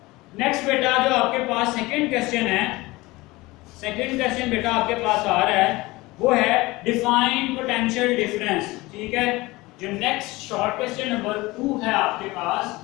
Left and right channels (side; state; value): right; quieter; 21.1 dB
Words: नेक्स्ट बेटा जो आपके पास सेकंड क्वेश्चन है, सेकंड क्वेश्चन बेटा आपके पास आ रहा है वो है डिफाइन पोटेंशियल डिफरेंस। ठीक है, जो नेक्स्ट शॉर्ट क्वेश्चन नंबर 2 है आपके पास,